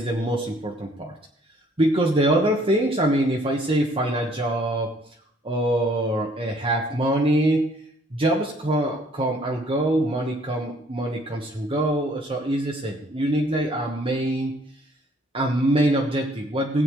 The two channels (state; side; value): normal; both; correlation 0.61